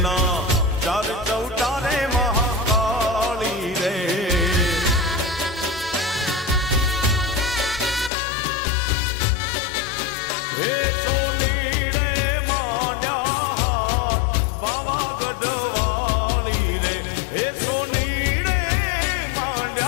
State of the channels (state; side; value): drops out; right; at 8.1 s